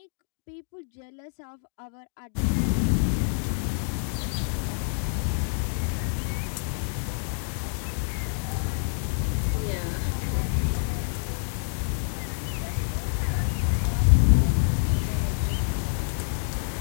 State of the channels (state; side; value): silent; right; digital silence